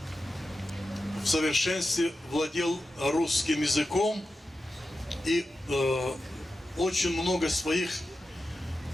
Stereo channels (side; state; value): both; normal; correlation 0.91